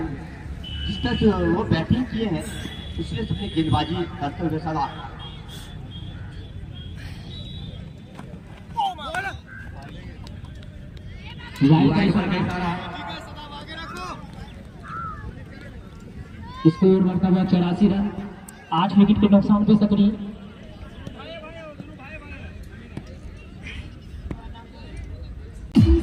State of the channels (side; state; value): both; identical; correlation 1.00